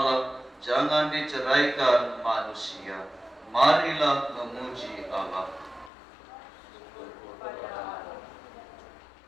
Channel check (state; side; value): drops out; right; at 5.9 s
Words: jangan diceraikan manusia. Marilah memuji Allah.